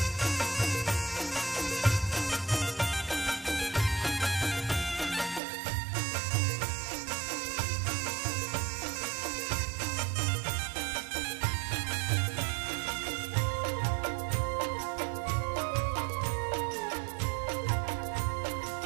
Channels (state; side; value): drops out; left; at 5.4 s